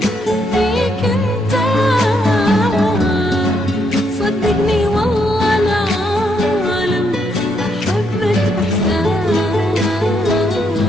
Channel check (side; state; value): both; normal; correlation 0.76